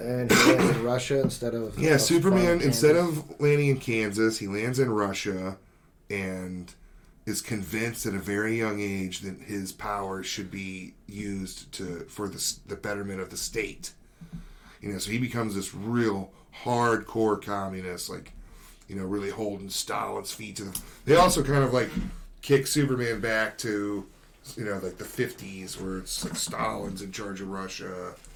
he lands in Russia instead of... Yeah, Superman, instead of landing in Kansas, he lands in Russia, and is convinced at a very young age that his power should be used for the betterment of the state. So he becomes this real hardcore communist, like, really holding Stalin's feet to them. They also kind of like kick Superman back to, like the 50s, where it's like Stalin's in charge of Russia,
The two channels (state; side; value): identical; both; correlation 1.00